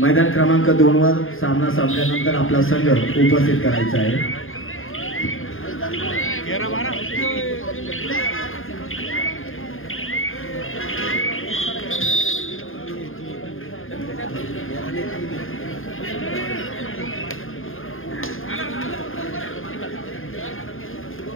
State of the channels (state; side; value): late; right; 0.59 ms